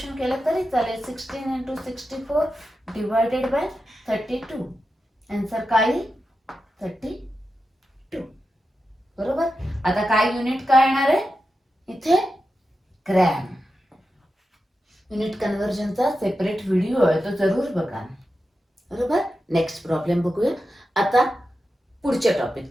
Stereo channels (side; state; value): both; normal; correlation 0.90